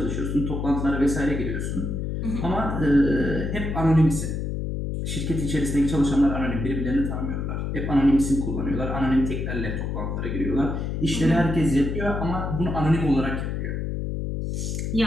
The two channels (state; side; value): noise; left; hum, 2 dB below the sound